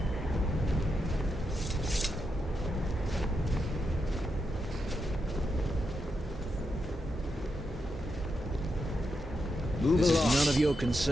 Move this along. Is none of your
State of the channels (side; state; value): both; normal; correlation 0.85